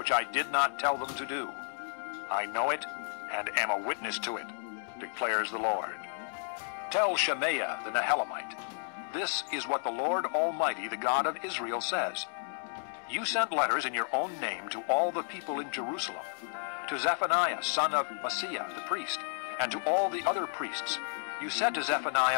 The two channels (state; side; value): silent; right; digital silence